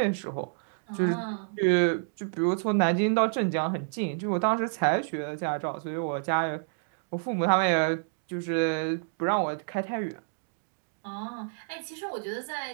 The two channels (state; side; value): silent; left; digital silence